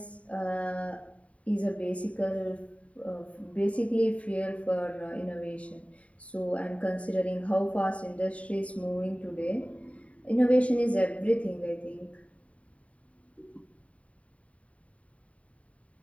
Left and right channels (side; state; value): right; late; 0.066 ms